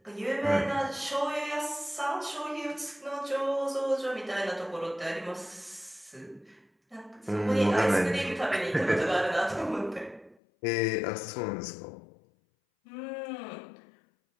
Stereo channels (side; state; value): right; drops out; at 10.4 s